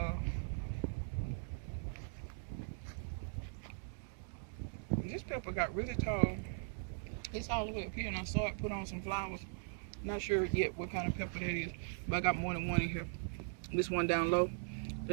This pepper got really tall. It's all the way up here, and I saw it put on some flowers. Not sure yet what kind of pepper that is, but I got more than one in here. This one down low,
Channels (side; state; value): left; silent; 51 dB below the other